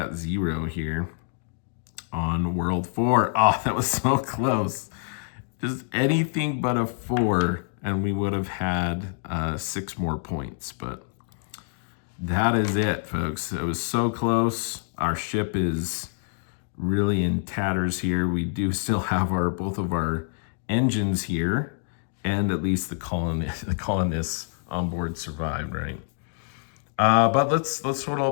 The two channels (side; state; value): right; silent; digital silence